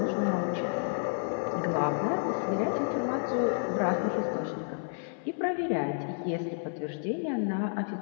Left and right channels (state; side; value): silent; right; 57 dB below the other